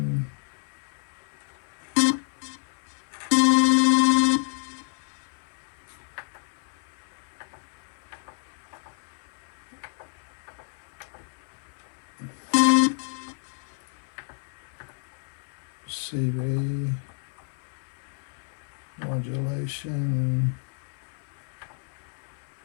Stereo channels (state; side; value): silent; right; 58 dB below the other